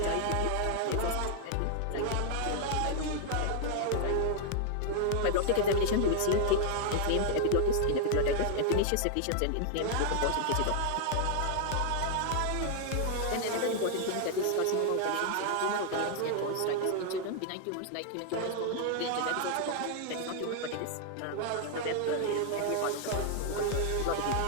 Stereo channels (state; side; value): different; both; correlation 0.00